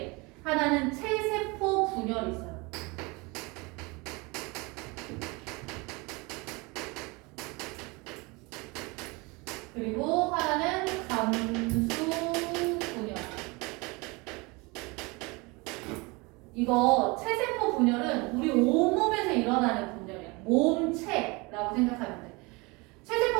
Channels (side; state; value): left; quieter; 26.3 dB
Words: 하나는 체세포 분열이 있어요. 그리고 하나는 감수 분열. 이거 체세포 분열은 우리 온몸에서 일어나는 분열이야. 몸체라고 생각하면 돼.